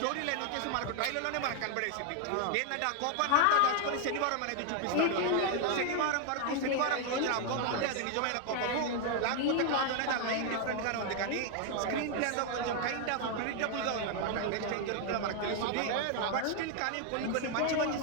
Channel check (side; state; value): both; different; correlation 0.00